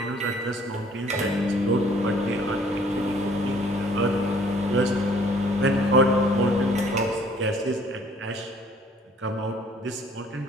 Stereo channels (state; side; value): normal; both; correlation 0.58